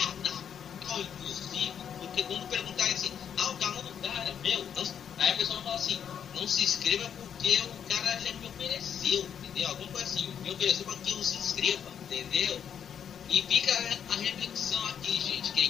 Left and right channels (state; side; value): quieter; right; 8.3 dB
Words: inclusive, porque quando perguntar assim, o canal do cara, meu, não, aí a pessoa fala assim, não se inscreva porque o cara já me ofereceu, entendeu? Alguma coisa assim, me ofereceu para que eu se inscreva, entendeu? E fica a reflexão aqui, gente, que a